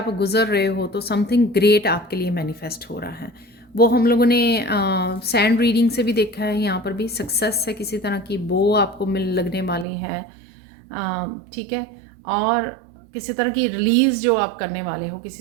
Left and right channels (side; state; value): left; drops out; at 9.9 s